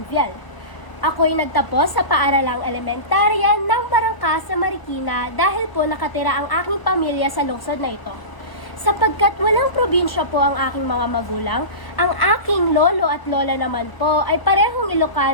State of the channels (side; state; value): right; late; 1.0 ms